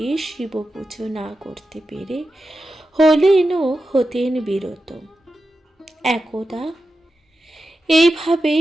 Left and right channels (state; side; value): normal; both; correlation 0.91